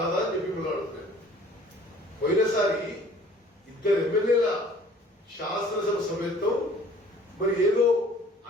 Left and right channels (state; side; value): normal; both; correlation 0.53